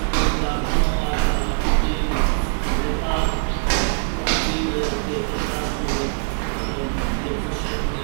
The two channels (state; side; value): silent; left; digital silence